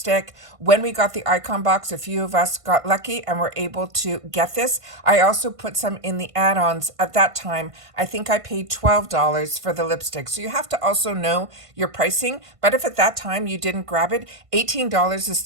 When we got the icon box, a few of us got lucky and were able to get this. I also put some in the add-ons at that time. I think I paid $12 for the lipstick. So you have to also know your pricing. But if at that time you didn't grab it, $18 is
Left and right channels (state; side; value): late; left; 1.5 ms